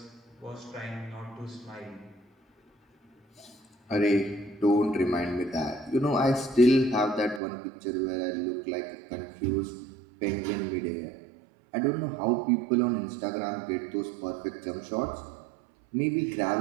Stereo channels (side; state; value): left; drops out; at 7.4 s